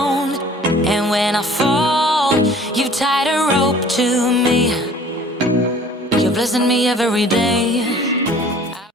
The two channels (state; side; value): normal; both; correlation 0.50